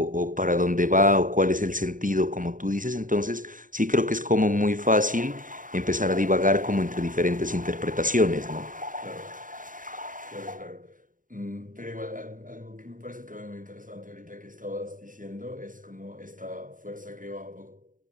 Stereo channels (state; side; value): late; left; 0.39 ms